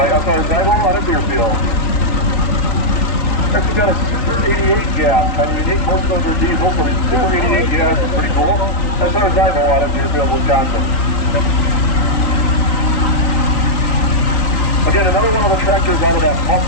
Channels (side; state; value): right; late; 3.9 ms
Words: SR Zybo out of Deerfield. Next we got a Super 88 gas, kind of unique. Most of those are diesel, so Super 88 gas is pretty cool. That's our Zybo out of Deerfield, Wisconsin. Again, another one of the tractors out of that